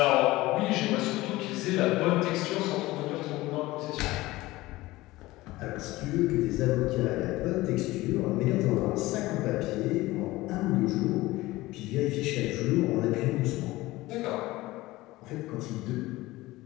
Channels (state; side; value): quieter; right; 18.8 dB